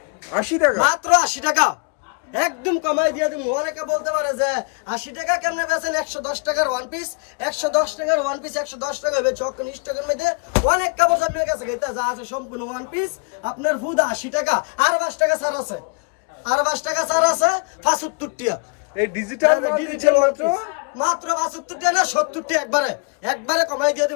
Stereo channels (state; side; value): quieter; right; 35.2 dB